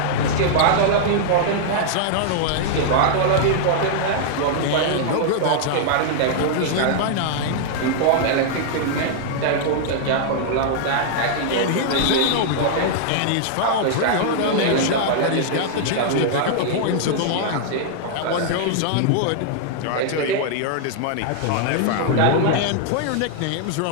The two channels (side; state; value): both; different; correlation -0.01